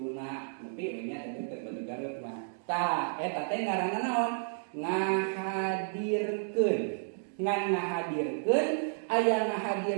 Nepi nya teh batu karut mah. Tah eta teh ngaranna naon? Ngahadirkeun. Ngan ngahadirkeun aya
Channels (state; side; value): silent; left; digital silence